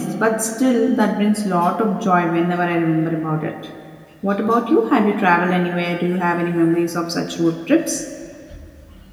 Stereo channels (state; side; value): identical; both; correlation 1.00